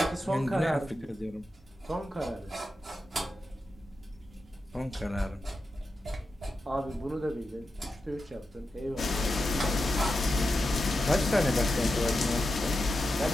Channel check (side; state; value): both; normal; correlation 0.89